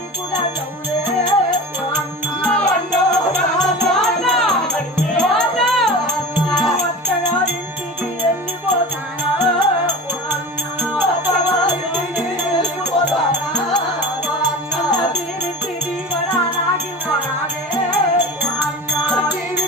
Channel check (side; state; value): both; normal; correlation 0.33